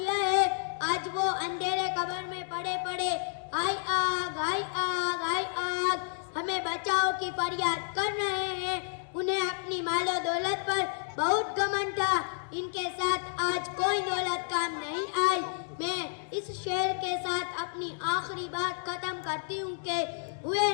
है। आज वो अंधेरे कब्र में पड़े पड़े हाय आग हाय आग हाय आग हमें बचाओ की फरियाद कर रहे हैं। उन्हें अपनी मालो दौलत पर बहुत घमंड था, इनके साथ आज कोई दौलत काम नहीं आई। मैं इस शेर के साथ अपनी आखिरी बात खत्म करती हूँ कि हुए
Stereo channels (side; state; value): right; silent; digital silence